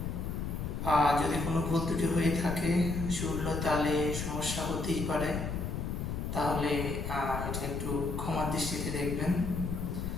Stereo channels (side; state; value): left; noise; rumble, 3 dB below the sound